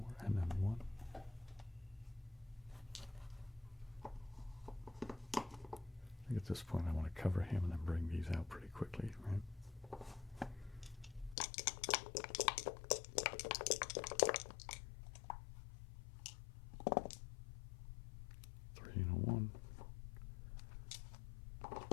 and then 1. I think at this point I want to cover him and then bring these out pretty quickly, right?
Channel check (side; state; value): right; drops out; at 11.4 s